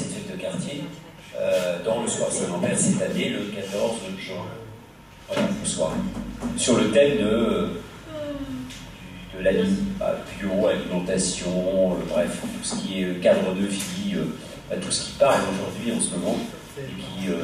fête de quartier dans le soir Saint-Lambert cette année, le 14 juin. Voilà, le soir. Sur le thème de la bio, alimentation, bref, tout ce qui est cadre de vie, tout ce qui parle aujourd'hui en ce moment et qui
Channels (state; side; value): identical; both; correlation 1.00